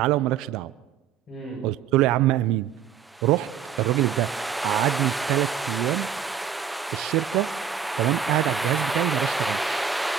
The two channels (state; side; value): quieter; left; 8.3 dB